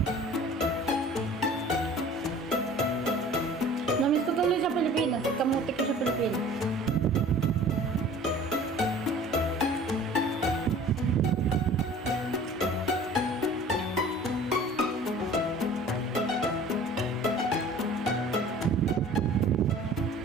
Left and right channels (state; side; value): normal; both; correlation 0.46